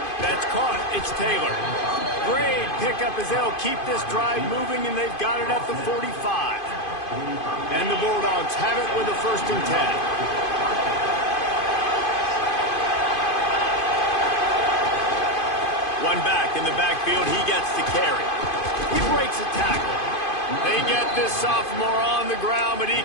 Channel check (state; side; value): late; right; 2.5 ms